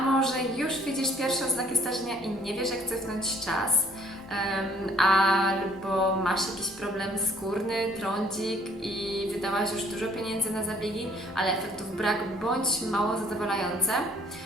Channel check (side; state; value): both; normal; correlation 0.59